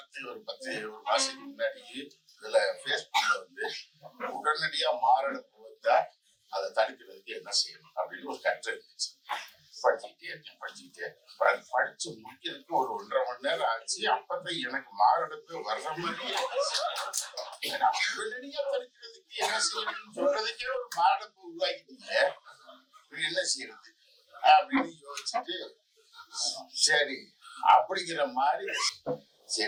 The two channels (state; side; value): identical; both; correlation 1.00